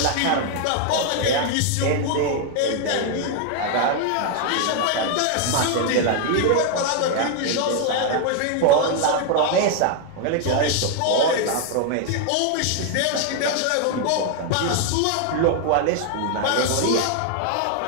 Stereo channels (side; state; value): both; different; correlation 0.00